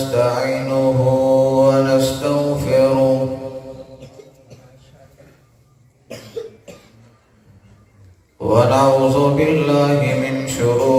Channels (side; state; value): both; identical; correlation 1.00